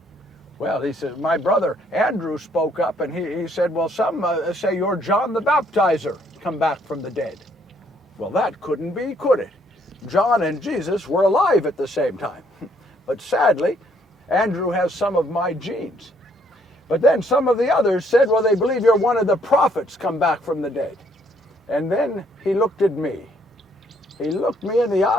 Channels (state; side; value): normal; both; correlation 0.67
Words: Well, he said, my brother Andrew spoke up, and he said, well, some say you're John the Baptizer, come back from the dead. Well, that couldn't be, could it? John and Jesus were alive at the same time. But sadly, Andrew has some of my genes. But then some of the others said, well, they believe you're one of the prophets come back from the dead. And then he looked at me. He looked me in the